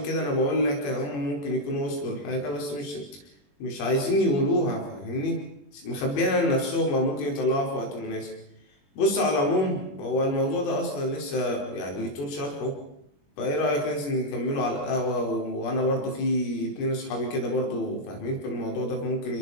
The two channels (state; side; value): late; right; 21 ms